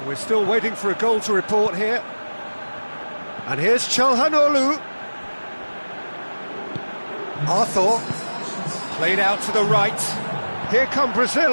We're still waiting for a goal to report here. And here's Çalhanoğlu. Arthur. Played out to the right. Here come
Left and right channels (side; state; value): both; inverted; correlation -1.00